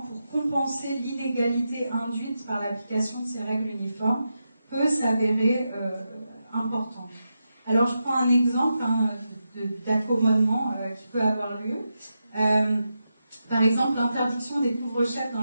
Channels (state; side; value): inverted; both; correlation -0.88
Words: pour compenser l'inégalité induite par l'application de ces règles uniformes peut s'avérer importante. Alors je prends un exemple d'accommodement qui peut avoir lieu. Par exemple, l'interdiction des couvre-chefs dans